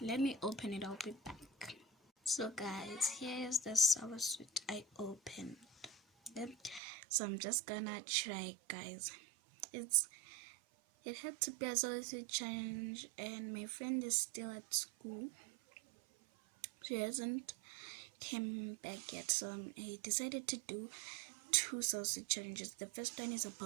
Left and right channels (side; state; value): left; drops out; at 6.8 s